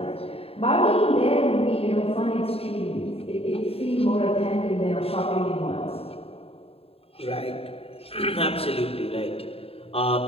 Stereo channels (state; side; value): late; right; 0.28 ms